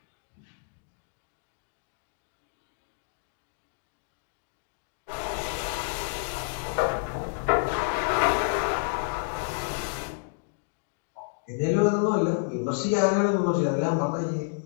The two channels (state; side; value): silent; right; digital silence